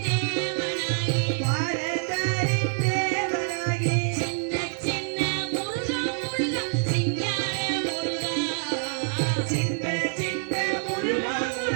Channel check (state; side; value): silent; left; 61 dB below the other